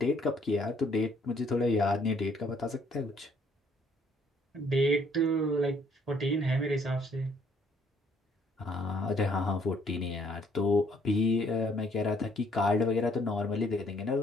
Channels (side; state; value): both; normal; correlation 0.64